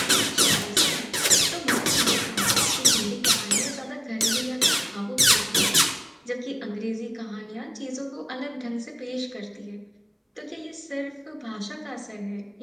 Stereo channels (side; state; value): both; identical; correlation 1.00